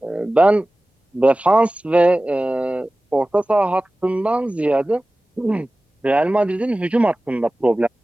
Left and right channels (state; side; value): normal; both; correlation 0.97